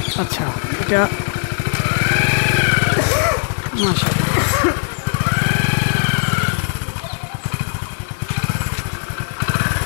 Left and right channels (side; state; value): right; silent; 67 dB below the other